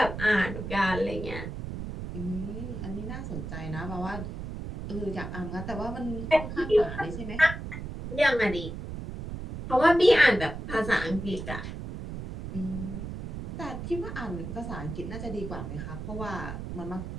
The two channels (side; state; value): right; noise; rumble, 7 dB below the sound